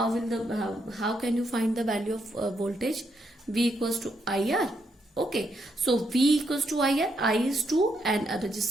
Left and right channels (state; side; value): normal; both; correlation 0.78